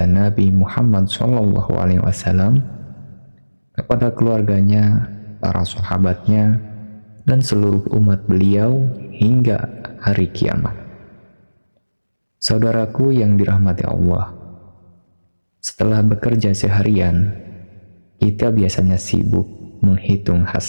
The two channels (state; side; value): inverted; both; correlation -1.00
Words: Nabi Muhammad SAW, kepada keluarganya, para sahabatnya, dan seluruh umat beliau hingga hari kiamat. Saudaraku yang dirahmati Allah, setelah bekerja seharian, kita biasanya sibuk menghitung